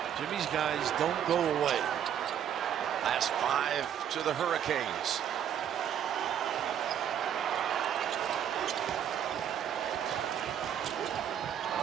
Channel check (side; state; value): left; quieter; 9.4 dB